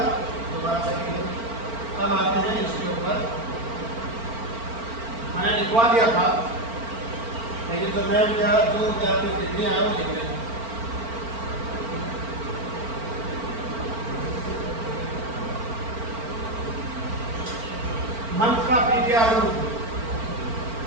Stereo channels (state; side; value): late; left; 4.4 ms